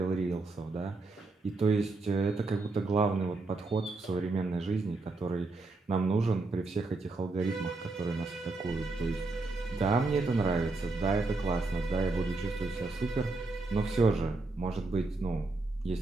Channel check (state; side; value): quieter; left; 3.4 dB